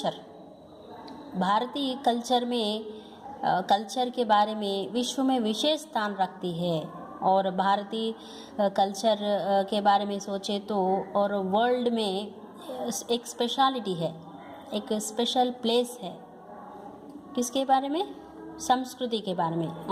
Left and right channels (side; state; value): both; identical; correlation 1.00